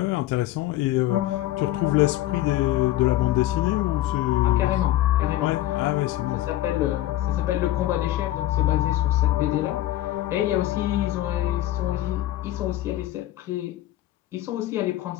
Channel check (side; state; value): right; quieter; 14.8 dB